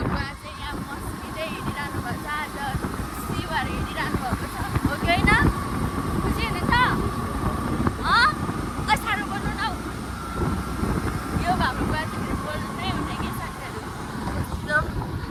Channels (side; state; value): both; identical; correlation 1.00